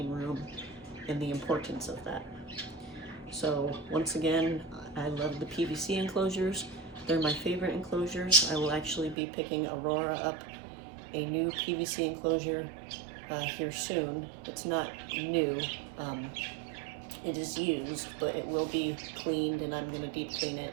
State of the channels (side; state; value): left; drops out; at 9.2 s